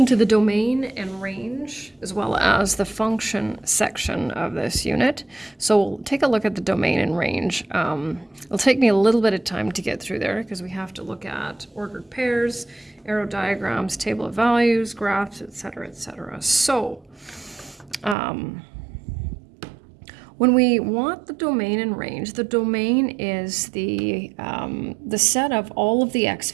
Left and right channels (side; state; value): left; drops out; at 18.2 s